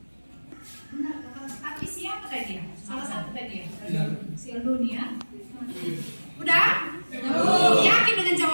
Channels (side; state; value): both; inverted; correlation -1.00